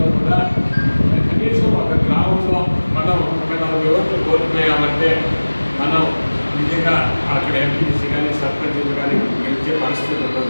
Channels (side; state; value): both; inverted; correlation -1.00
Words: కూడా కనీసం ఒక గ్రామంలో మనం ఒక 40 ఓట్లు కోల్పోయామంటే మనం నిజంగా అక్కడ ఎంపీసీ కానీ సర్పంచ్లు కానీ గెలిచే పరిస్థితి